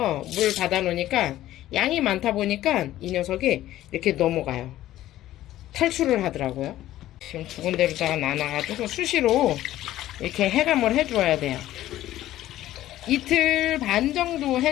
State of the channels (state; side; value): quieter; right; 14.2 dB